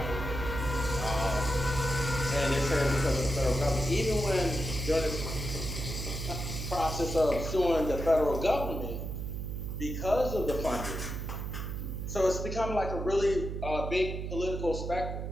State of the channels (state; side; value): noise; right; hum, 4 dB below the sound